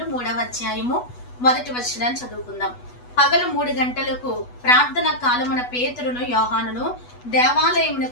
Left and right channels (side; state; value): right; late; 8.1 ms